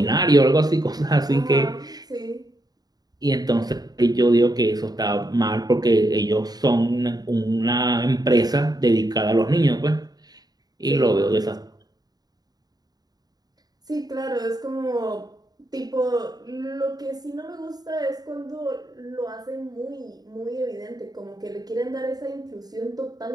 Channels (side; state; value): left; late; 0.19 ms